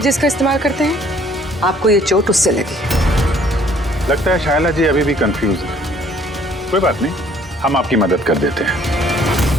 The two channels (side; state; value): both; normal; correlation 0.59